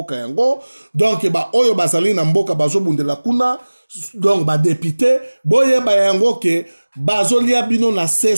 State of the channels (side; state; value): both; inverted; correlation -1.00